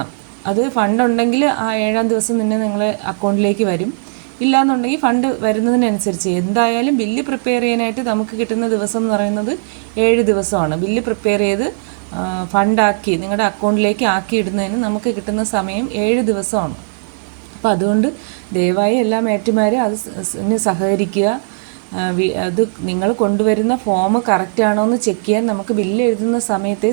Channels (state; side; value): silent; left; 68 dB below the other